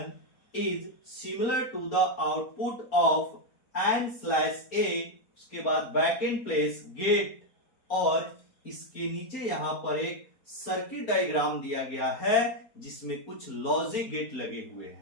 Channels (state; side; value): late; right; 4.3 ms